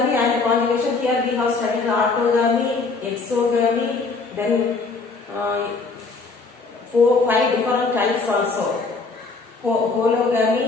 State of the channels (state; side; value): quieter; right; 4.0 dB